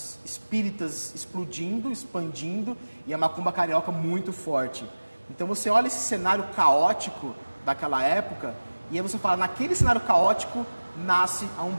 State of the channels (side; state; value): both; inverted; correlation -1.00